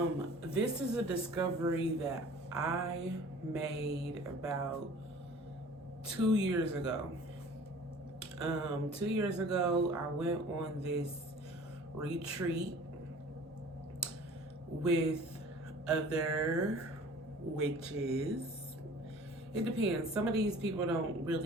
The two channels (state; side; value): normal; both; correlation 0.47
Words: This is a discovery that I made about 2 years ago. 2 years ago, I went on this retreat with other witches. It depends. Some of these people don't